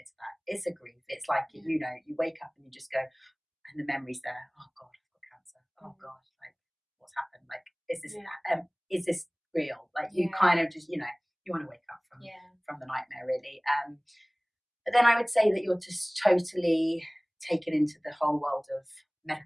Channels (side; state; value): both; identical; correlation 1.00